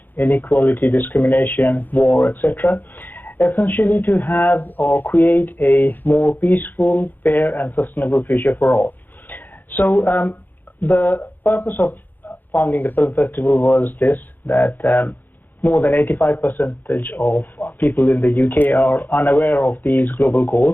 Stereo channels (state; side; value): late; right; 0.088 ms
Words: inequality, discrimination, war, etc., essentially to have or create a more peaceful, fair and sustainable future for all. So the purpose of founding the film festival was this, that more than 85% of people in the UK are unaware of these global